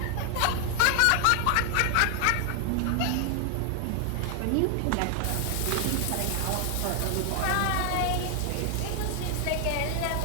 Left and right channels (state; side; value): different; both; correlation 0.00